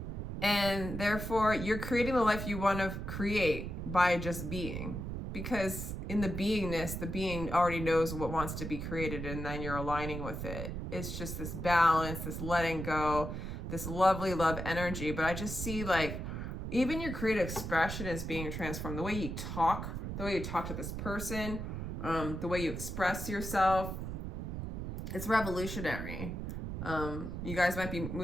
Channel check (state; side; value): noise; right; rumble, 5 dB below the sound